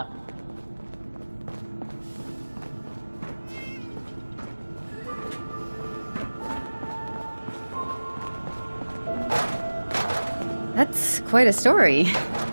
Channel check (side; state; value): both; inverted; correlation -1.00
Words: That's quite a story.